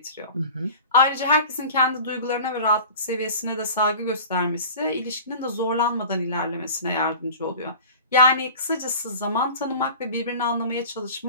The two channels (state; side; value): inverted; both; correlation -0.39